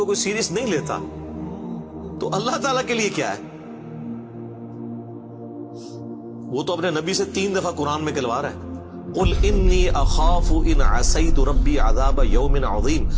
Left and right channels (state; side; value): identical; both; correlation 1.00